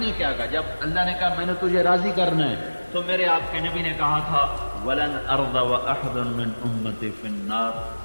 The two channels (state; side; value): inverted; both; correlation -1.00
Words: کیا کہا؟ جب اللہ نے کہا میں نے تجھے راضی کرنا ہے تو میرے آپ کے نبی نے کہا تھا وَلَنْ أَرْضَ وَأَحْدٌ مِّنْ أُمَّتِي فِي